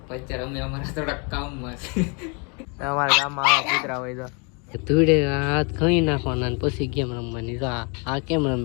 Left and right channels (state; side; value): quieter; right; 33.9 dB